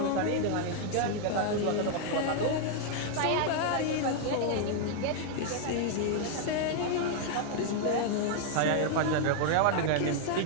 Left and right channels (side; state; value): both; different; correlation 0.00